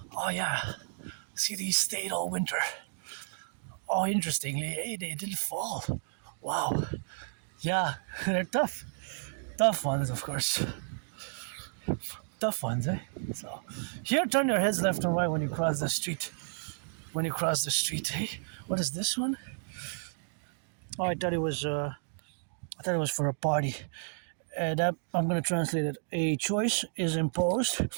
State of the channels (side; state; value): left; silent; digital silence